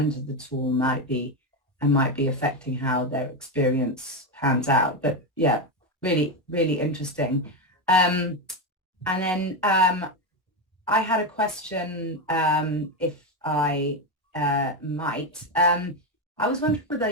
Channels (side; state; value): both; normal; correlation 0.10